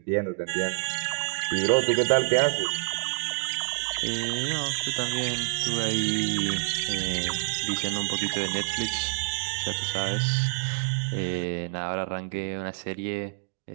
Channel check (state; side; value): silent; left; digital silence